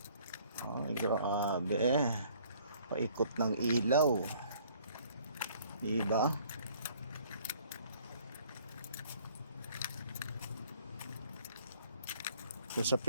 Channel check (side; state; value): both; inverted; correlation -0.58